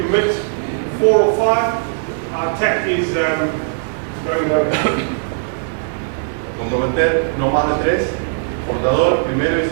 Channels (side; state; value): left; silent; digital silence